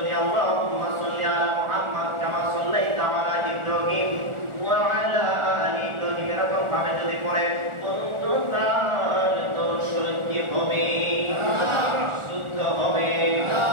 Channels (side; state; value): left; late; 1.4 ms